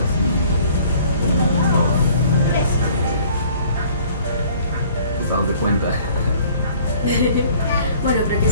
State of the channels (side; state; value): both; inverted; correlation -0.54